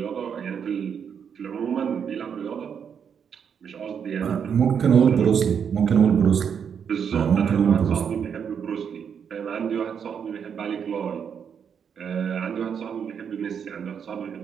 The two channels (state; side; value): quieter; left; 7.4 dB